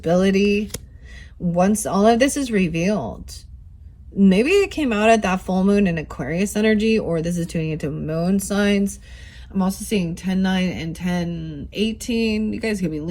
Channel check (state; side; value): identical; both; correlation 1.00